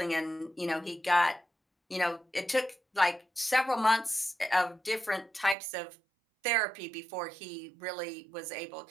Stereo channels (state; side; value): drops out; left; at 5.6 s